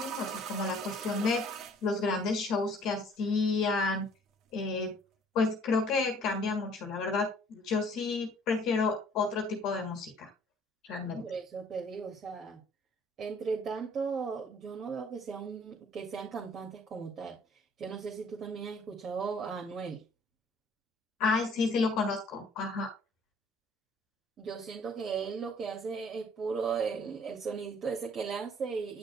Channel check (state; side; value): normal; both; correlation 0.57